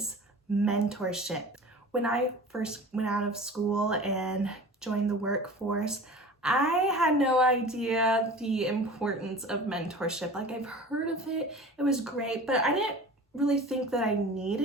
mentorship. When I first went out of school and joined the workforce, I had no idea the importance of mentorship. Like, I've heard of it, it was great, but I didn't really think that I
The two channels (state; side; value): normal; both; correlation 0.38